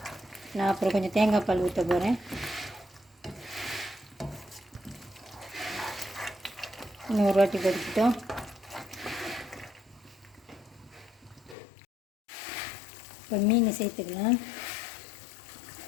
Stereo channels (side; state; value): right; drops out; at 11.6 s